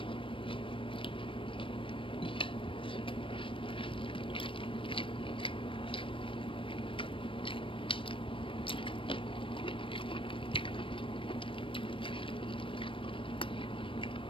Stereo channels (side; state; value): right; late; 0.25 ms